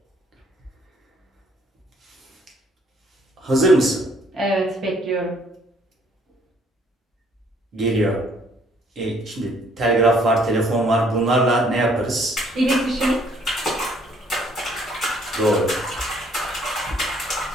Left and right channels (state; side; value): normal; both; correlation 0.63